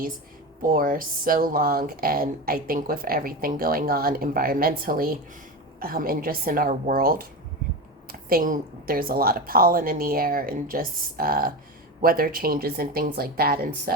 for so long, and I think with everything going on environmentally and just in our world, there's a lot of pollen in the air and just weather changes and things like that. And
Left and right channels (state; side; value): normal; both; correlation 0.21